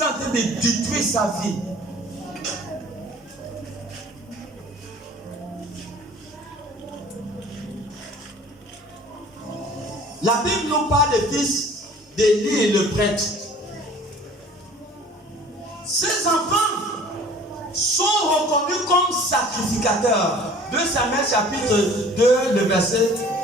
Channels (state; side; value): normal; both; correlation 0.49